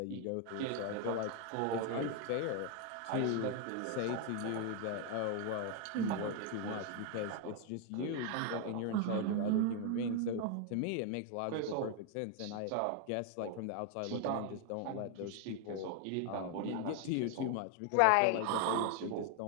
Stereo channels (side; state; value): both; different; correlation 0.01